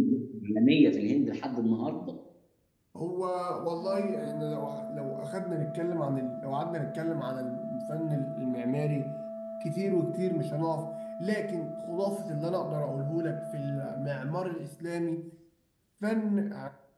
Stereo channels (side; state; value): both; identical; correlation 1.00